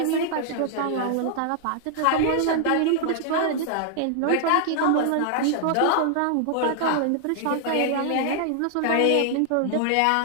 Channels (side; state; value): both; different; correlation 0.00